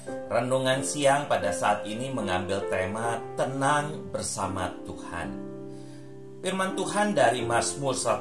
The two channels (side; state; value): both; identical; correlation 1.00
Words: Renungan siang pada saat ini mengambil tema tenang bersama Tuhan. Firman Tuhan dari Mazmur